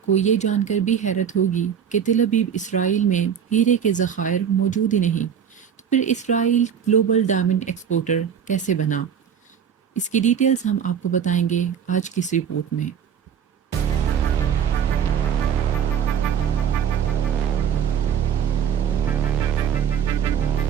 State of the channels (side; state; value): left; quieter; 8.1 dB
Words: کو یہ جان کر بھی حیرت ہوگی کہ تل ابیب اسرائیل میں ہیرے کے ذخائر موجود ہی نہیں۔ تو پھر اسرائیل گلوبل ڈائمنڈ ایکسپورٹر کیسے بنا؟ اس کی ڈیٹیلز ہم آپ کو بتائیں گے آج کی اس رپورٹ میں۔